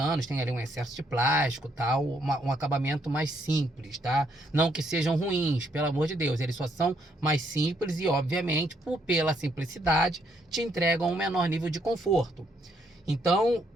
tem ali um excesso de plástico, tal, um acabamento mais simples, tá? Não que sejam ruins, pelo amor de Deus, eles só são mais simples e, obviamente, pela simplicidade, te entregam um menor nível de conforto. Então,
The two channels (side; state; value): both; normal; correlation 0.72